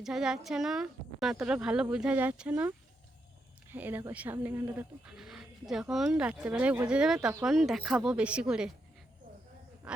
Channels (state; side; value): normal; both; correlation 0.82